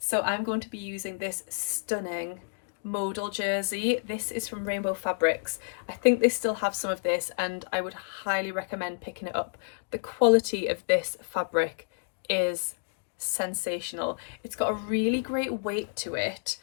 I'm going to be using this stunning modal jersey. This is from Rainbow Fabrics. I think they still have some of this and I would highly recommend picking it up. The quality of this fabric is sensational. It's got a really great weight to it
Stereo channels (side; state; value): right; silent; digital silence